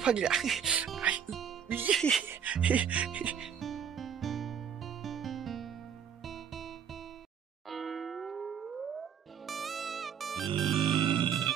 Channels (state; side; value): quieter; left; 8.0 dB